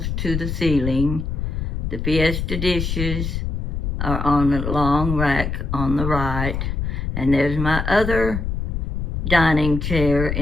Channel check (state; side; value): noise; left; rumble, 2 dB below the sound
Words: to the ceiling. The Fiesta dishes are on a long rack on the right. And there's my other dining chair